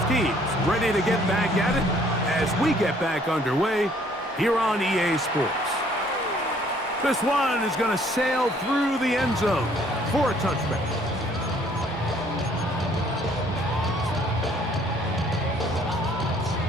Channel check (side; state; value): both; normal; correlation 0.61